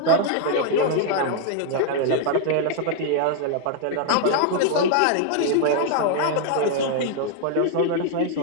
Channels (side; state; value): both; different; correlation 0.00